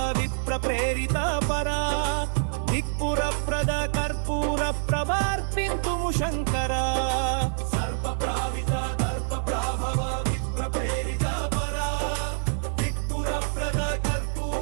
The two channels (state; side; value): silent; left; 61 dB below the other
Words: విప్ర ప్రేరిత పరా దిక్పుర ప్రద కర్పూర ప్రభార్పింతుము శంకర సర్ప ప్రావిత దర్ప ప్రాభవ విప్ర ప్రేరిత పరా దిక్పుర ప్రద